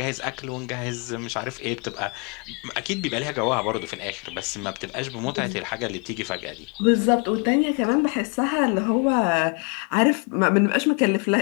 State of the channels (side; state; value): right; quieter; 34.6 dB